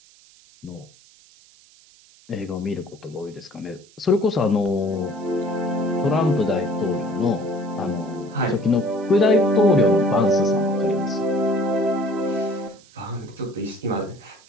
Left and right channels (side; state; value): right; noise; hiss, 27 dB below the sound